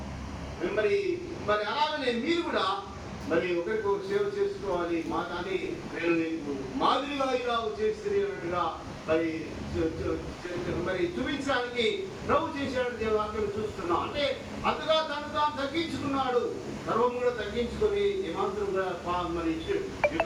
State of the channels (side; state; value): both; identical; correlation 1.00